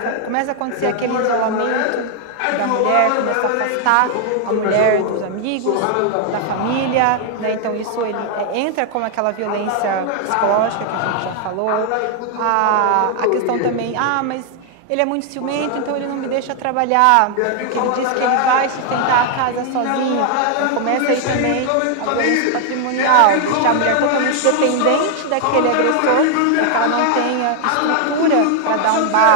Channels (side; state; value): both; different; correlation 0.00